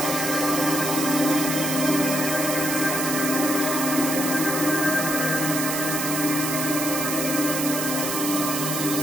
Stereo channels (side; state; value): right; noise; hiss, 2 dB below the sound